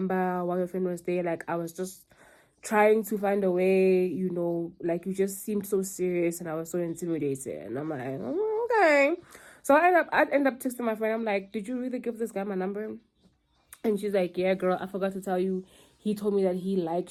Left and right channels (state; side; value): identical; both; correlation 1.00